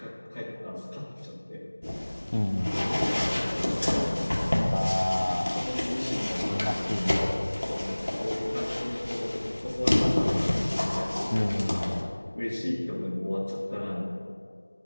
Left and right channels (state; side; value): inverted; both; correlation -1.00